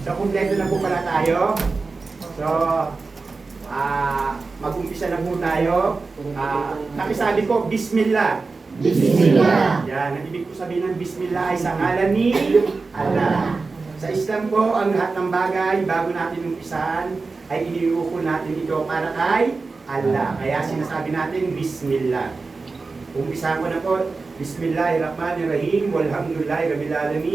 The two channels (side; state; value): left; quieter; 4.1 dB